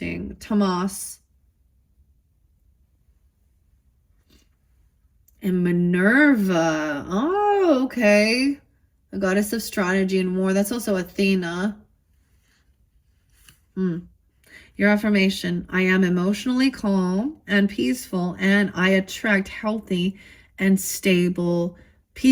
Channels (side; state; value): both; identical; correlation 1.00